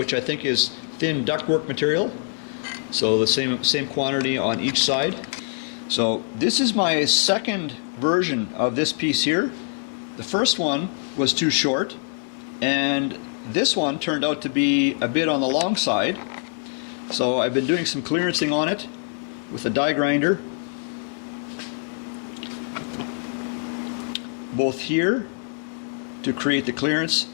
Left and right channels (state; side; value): silent; right; 63 dB below the other